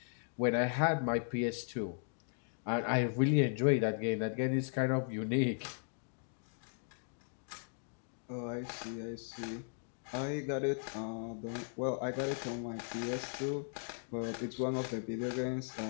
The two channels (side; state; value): right; silent; digital silence